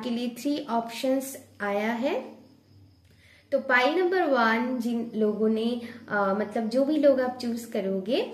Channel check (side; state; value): both; identical; correlation 1.00